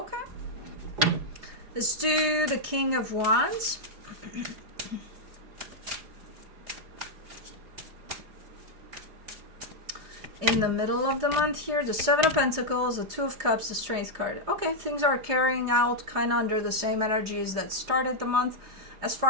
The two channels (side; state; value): left; late; 4.9 ms